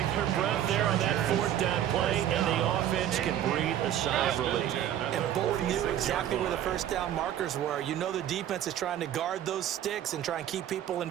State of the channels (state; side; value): quieter; left; 11.1 dB